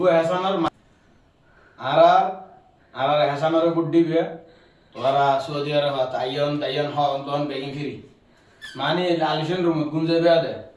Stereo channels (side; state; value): both; identical; correlation 1.00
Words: হেসানের আর আর হেসানের বুট দিবে তোরা সৌদি আরব তাইয়ন তাইয়ন হন বেগিন ফিরি মানে লালিশন রুম গুঞ্জে বেয়া দে